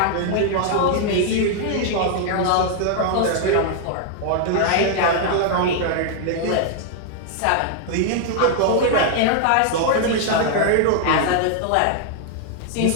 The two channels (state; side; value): different; both; correlation 0.00